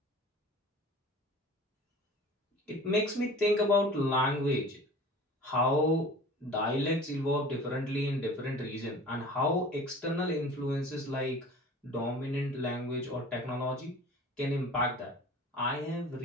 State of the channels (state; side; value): normal; both; correlation 0.42